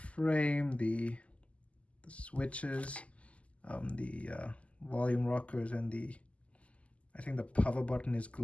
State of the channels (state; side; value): late; right; 0.063 ms